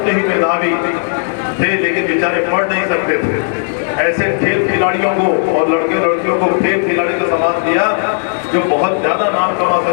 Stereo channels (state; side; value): silent; right; digital silence